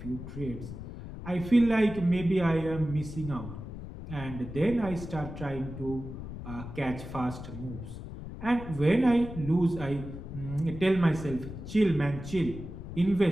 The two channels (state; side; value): noise; left; rumble, 10 dB below the sound